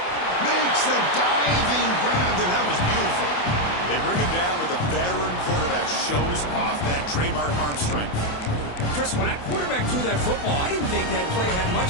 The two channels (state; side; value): late; right; 28 ms